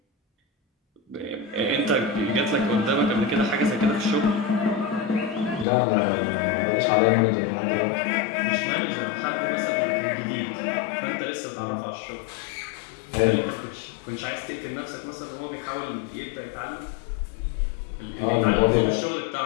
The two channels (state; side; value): drops out; right; at 5.7 s